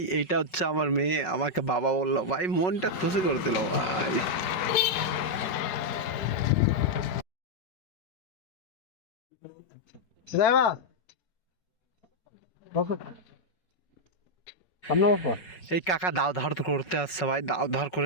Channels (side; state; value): right; late; 5.4 ms